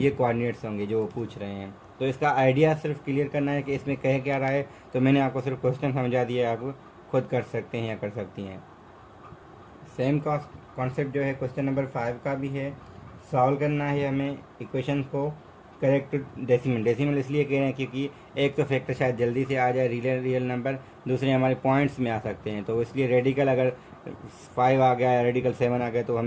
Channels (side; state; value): both; identical; correlation 1.00